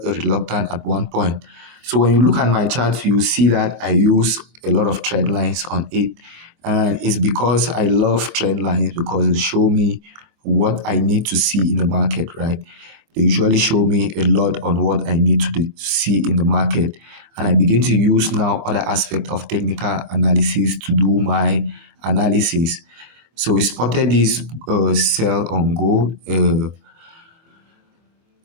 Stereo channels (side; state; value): left; late; 24 ms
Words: reluctant at one point. So when you look at my chart, you see that I use a lot of trend lines on it. And it's because I love trend lines because they show me what I need to see in the market, right? They usually show me a lot on what I need to see in the market. And I begin to use now other aspect of technical analysis to do my analysis. So we spotted this sell on gold